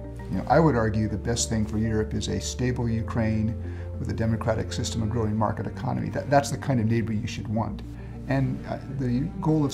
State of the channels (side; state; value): both; identical; correlation 1.00